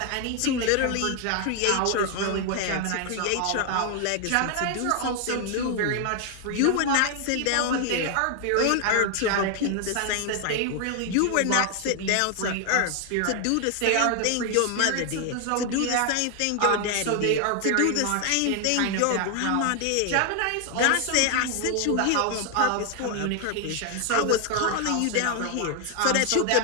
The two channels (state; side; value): different; both; correlation 0.00